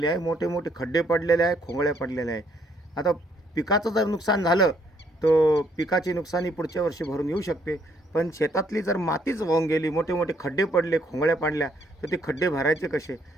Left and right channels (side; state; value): both; normal; correlation 0.68